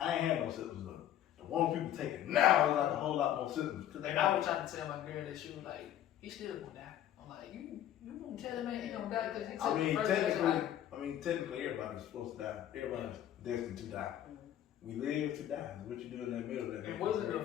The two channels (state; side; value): quieter; right; 11.5 dB